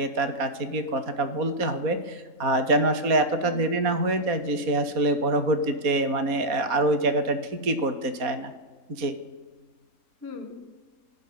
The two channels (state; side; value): late; left; 4.1 ms